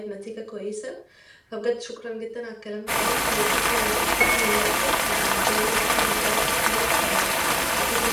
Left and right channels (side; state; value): both; identical; correlation 1.00